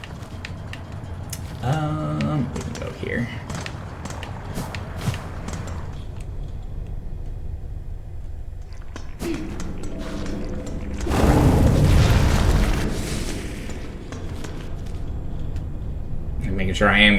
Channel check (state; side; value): identical; both; correlation 1.00